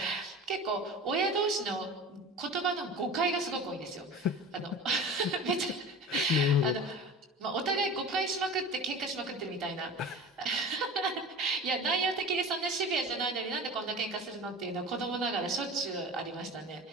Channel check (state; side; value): normal; both; correlation 0.35